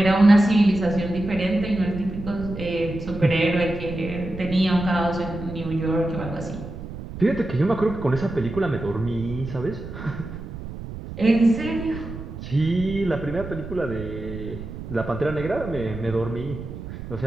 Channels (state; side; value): noise; right; rumble, 10 dB below the sound